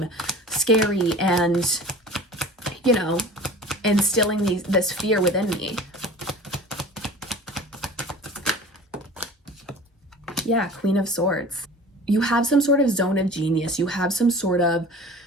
scary and, you know, instilling this fear within me. Yeah, Queen of Swords. You have some sort of zone of genius. You have some sort of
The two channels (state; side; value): normal; both; correlation 0.41